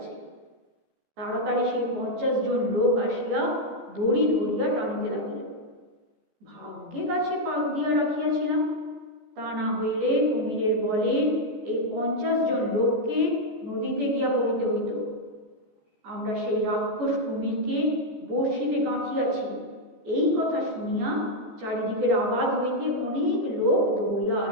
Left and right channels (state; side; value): late; left; 14 ms